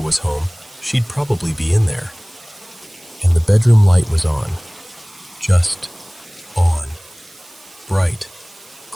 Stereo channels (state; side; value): noise; right; hiss, 25 dB below the sound